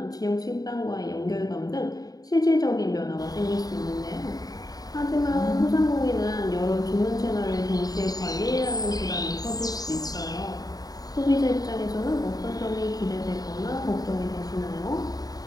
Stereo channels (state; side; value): late; right; 0.18 ms